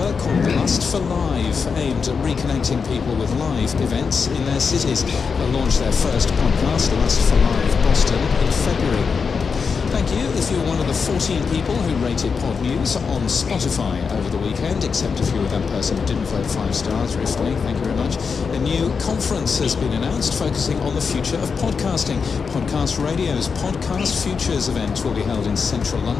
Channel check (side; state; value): right; quieter; 5.5 dB